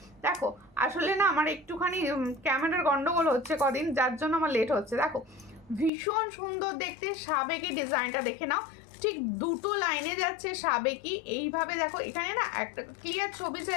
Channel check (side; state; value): right; drops out; at 5.9 s